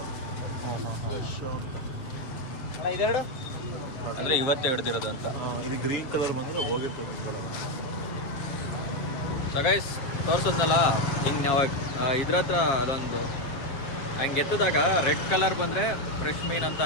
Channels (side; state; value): right; late; 7.5 ms